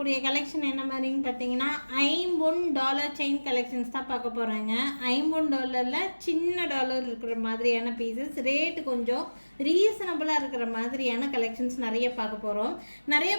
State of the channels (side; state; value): both; inverted; correlation -1.00